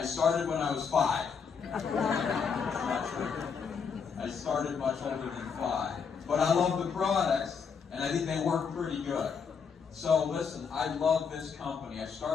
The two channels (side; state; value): right; quieter; 6.1 dB